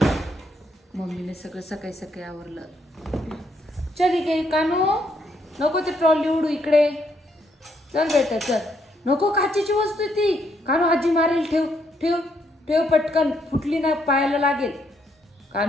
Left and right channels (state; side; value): normal; both; correlation 0.74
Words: मम्मीने सगळं सकाळी सकाळी आवरलं. चल इकडे कानू, नको ते ट्रॉली उडू इकडे. चल बेटा चल. नको काचेची वस्तू आहे ती. कानू आजी मारेल. ठेव ठेव ठेव पटकन. फुटली ना पायाला लागेल.